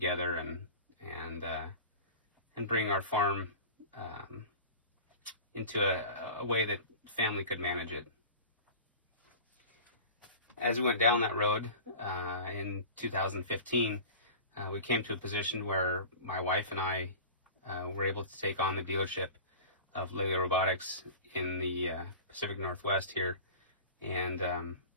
and bring our farm into a way that family could manage it. As we went down that road in 2015, we came to a position where my wife and I were able to take on the dealership of Lely Robotics in the Pacific Northwest here, and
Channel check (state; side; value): inverted; both; correlation -0.36